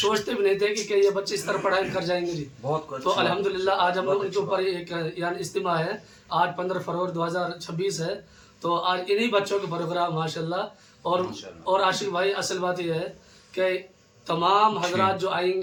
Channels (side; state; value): both; identical; correlation 1.00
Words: भी नहीं थे कि ये बच्चे इस तरह पढ़ाई कर जाएंगे जी। तो अल्हम्दुलिल्लाह आज हम लोग उनके ऊपर एक यानी इज्तिमा है। आज 15 फरवरी 2026 है। तो आज इन्हीं बच्चों के प्रोग्राम माशाल्लाह और आशिक भाई असल बात यह है कि तमाम हजरात जो